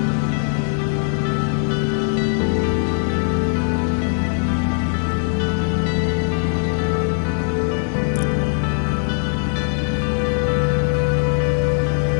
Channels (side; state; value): right; silent; 66 dB below the other